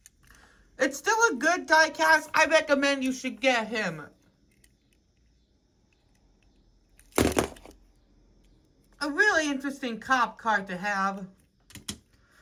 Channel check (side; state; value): both; identical; correlation 1.00